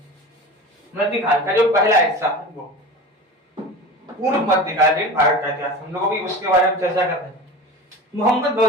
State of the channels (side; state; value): both; normal; correlation 0.32